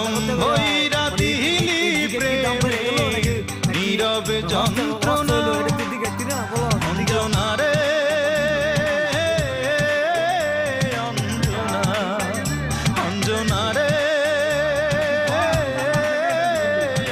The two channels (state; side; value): identical; both; correlation 1.00